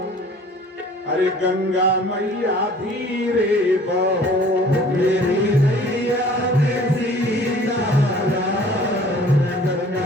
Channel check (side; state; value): both; normal; correlation 0.51